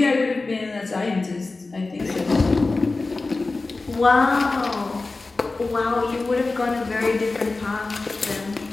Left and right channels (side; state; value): right; quieter; 3.5 dB